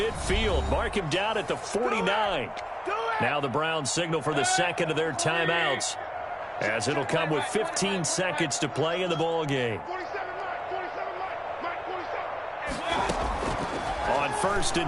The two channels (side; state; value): both; identical; correlation 1.00